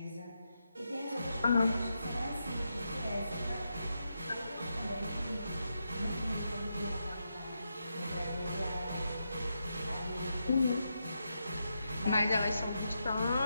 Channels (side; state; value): both; inverted; correlation -0.85